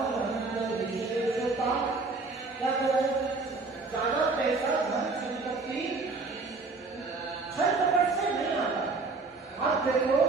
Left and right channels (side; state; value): left; quieter; 3.8 dB